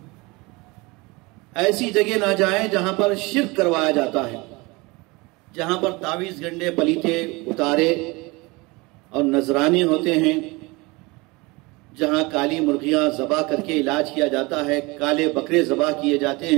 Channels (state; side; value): quieter; left; 24.7 dB